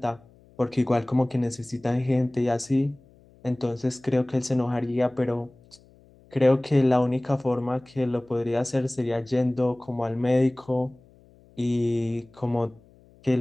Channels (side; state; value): left; noise; hum, 28 dB below the sound